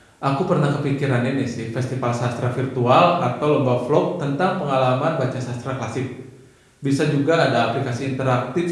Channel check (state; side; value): identical; both; correlation 1.00